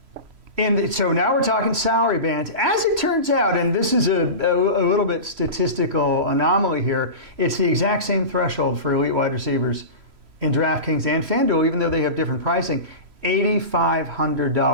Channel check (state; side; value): late; left; 3.0 ms